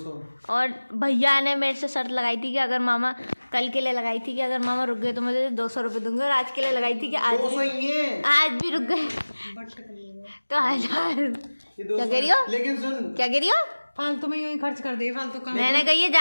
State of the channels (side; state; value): both; inverted; correlation -1.00